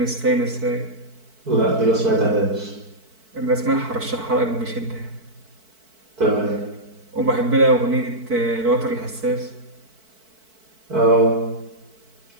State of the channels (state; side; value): late; left; 4.5 ms